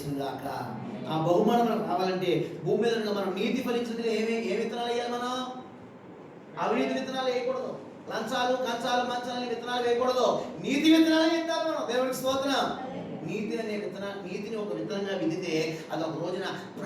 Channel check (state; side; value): identical; both; correlation 1.00